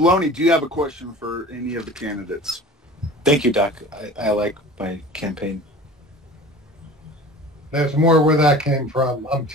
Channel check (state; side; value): normal; both; correlation 0.40